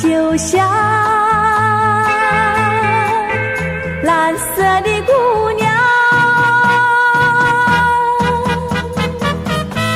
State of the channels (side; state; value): both; identical; correlation 1.00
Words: 像蓝色的姑娘。